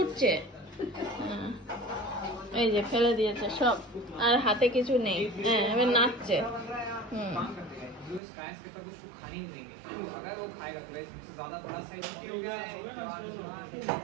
এই যে ফেলে দিয়েছে সব, আর হাতে কিছু নেই। এবার নাচছে।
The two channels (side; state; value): left; drops out; at 8.2 s